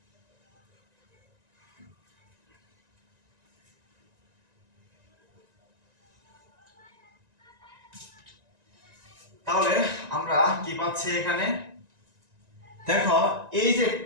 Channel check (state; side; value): late; left; 1.9 ms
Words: তাহলে আমরা কি পাচ্ছি এখানে, দেখো এই যে